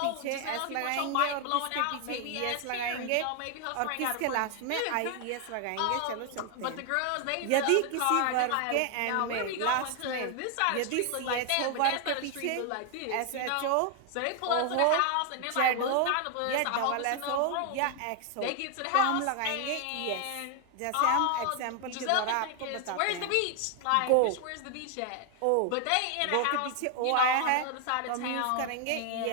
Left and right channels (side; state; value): both; different; correlation 0.00